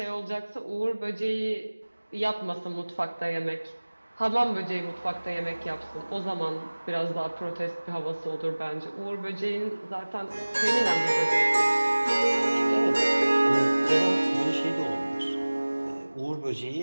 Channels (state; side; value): inverted; both; correlation -1.00